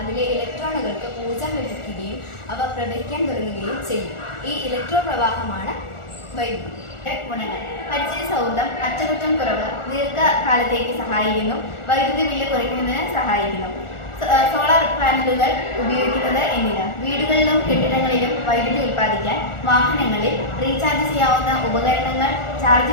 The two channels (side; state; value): right; late; 1.4 ms